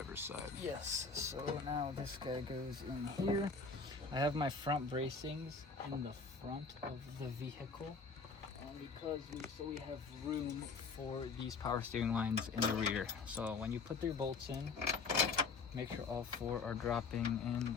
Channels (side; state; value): right; quieter; 4.6 dB